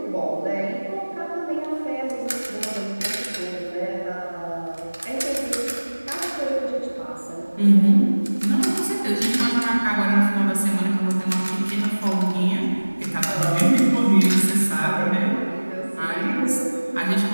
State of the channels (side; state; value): both; inverted; correlation -1.00